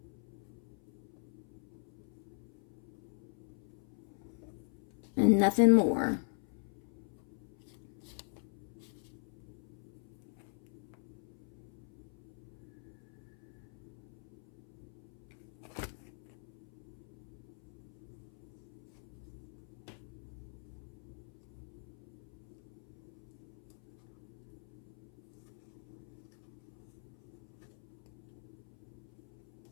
And nothing more.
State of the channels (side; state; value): right; silent; 50 dB below the other